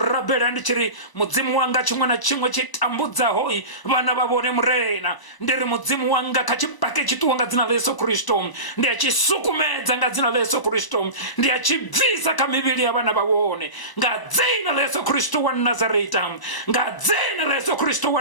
ndichiri muzimu wanga chimwe na chimwe chitambuza hoi, bana babone murena. Ndiri muzimu wanga kachipake chituwanga zina la Yesu Kristo, ndiya chisukumeza nga zina la Yesu Kristo, ndiya chivisa kamibili ya bana babone, nga zina la Yesu Kristo wa Nazareta, nga zina la Yesu Kristo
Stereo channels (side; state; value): right; late; 1.0 ms